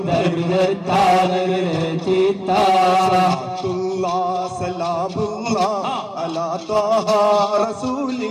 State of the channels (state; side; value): identical; both; correlation 1.00